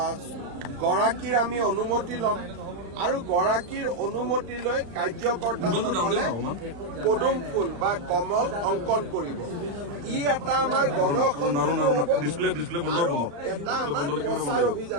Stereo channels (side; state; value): left; late; 35 ms